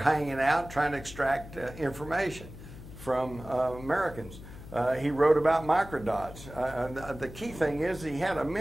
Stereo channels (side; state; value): left; noise; hum, 15 dB below the sound